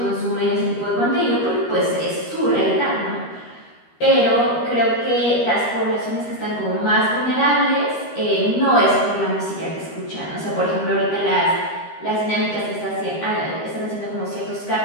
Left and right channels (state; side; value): late; right; 13 ms